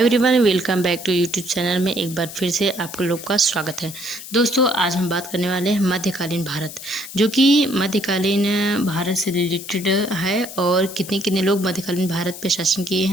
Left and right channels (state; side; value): noise; left; hiss, 12 dB below the sound